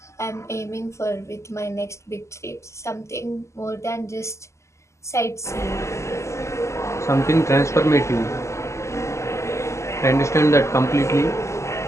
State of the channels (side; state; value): right; late; 0.13 ms